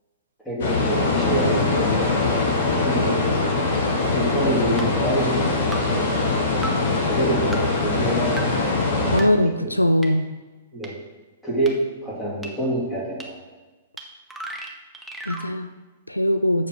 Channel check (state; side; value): inverted; both; correlation -0.46